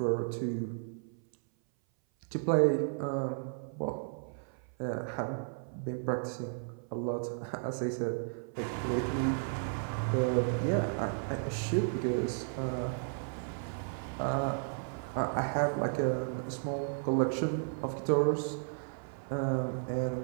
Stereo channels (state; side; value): silent; left; 55 dB below the other